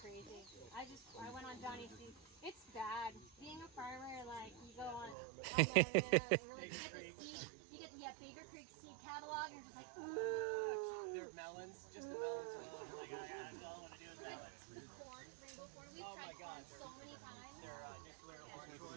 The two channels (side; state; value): left; drops out; at 5.2 s